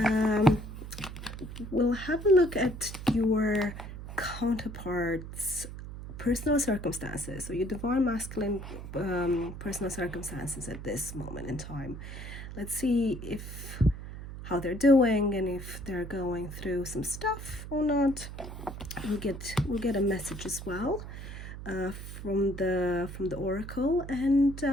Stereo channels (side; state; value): right; noise; hum, 10 dB below the sound